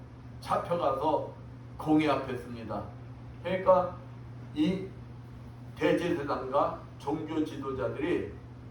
잡혀가서 공회 앞에 씁니다. 그러니까 이 대제사장과 종교 지도자들이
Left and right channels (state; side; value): identical; both; correlation 1.00